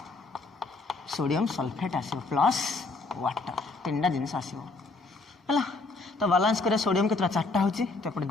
सोडियम सल्फेट आसो प्लस वाटर 3टा जिनस आसो है तो बैलेंस कर सोडियम के 4टा होची तो एपटे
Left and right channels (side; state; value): right; quieter; 3.5 dB